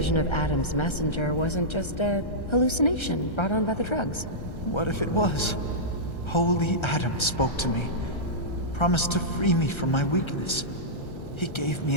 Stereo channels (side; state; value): right; late; 1.3 ms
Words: of Adam's messenger wasn't just a hallucination brought on by the drugs? What if it was? Holy Adam spoke to me, promised to free me from my weakness. He gave me